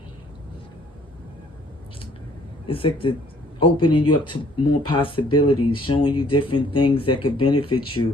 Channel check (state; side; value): normal; both; correlation 0.60